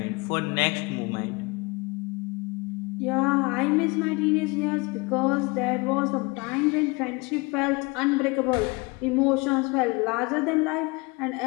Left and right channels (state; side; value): quieter; right; 26.4 dB